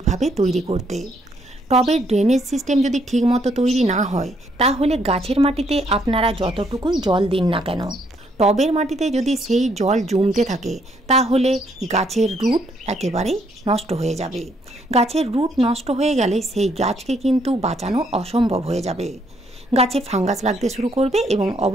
তৈরি করতে। টবের ড্রেনেজ সিস্টেম যদি ঠিকমতো তৈরি না হয়, তাহলে গাছের মাটিতে আপনারা যতটুকুই জল দিন না কেন, টবের মাটিতে যদি সেই জল জমতে থাকে, তাহলে গাছের রুট একেবারেই নষ্ট হয়ে যাবে। গাছের রুট নষ্ট হয়ে গেলে সেই গাছকে কিন্তু বাঁচানো অসম্ভব হয়ে যাবে। গাছে ফাঙ্গাস লাগতে শুরু করবে এবং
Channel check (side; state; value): both; normal; correlation 0.71